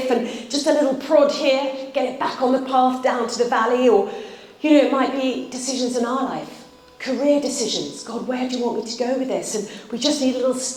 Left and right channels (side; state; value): both; identical; correlation 1.00